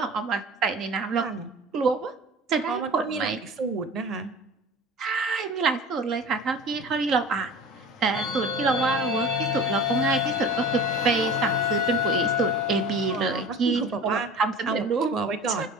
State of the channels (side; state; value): both; normal; correlation 0.38